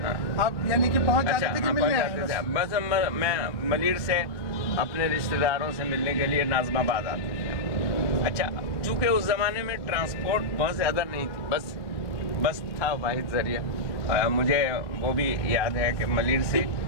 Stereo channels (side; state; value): right; late; 1.2 ms